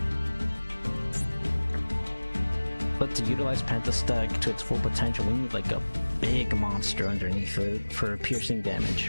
But to utilize Pentasteg to its full potential, we need, like, a big monster underneath it for piercing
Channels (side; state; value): both; inverted; correlation -1.00